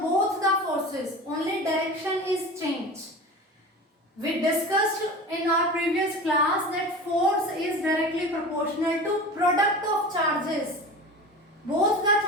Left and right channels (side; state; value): both; normal; correlation 0.34